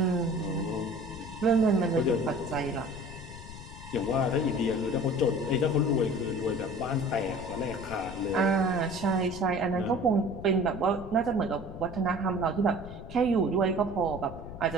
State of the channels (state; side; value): noise; left; rumble, 13 dB below the sound